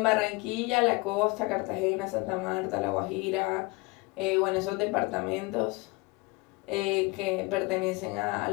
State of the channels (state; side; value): quieter; right; 25.1 dB